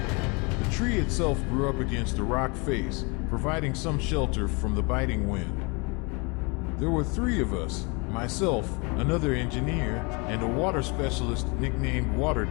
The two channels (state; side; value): quieter; right; 30.0 dB